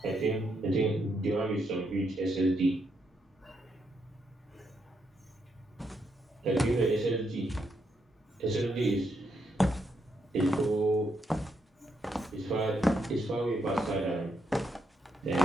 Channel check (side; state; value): both; normal; correlation 0.79